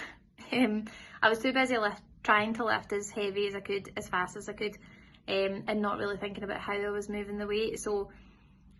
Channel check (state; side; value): identical; both; correlation 1.00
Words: I was too busy trying to lift as heavy as I could, as fast as I could, and not really thinking about how I was moving the weight. So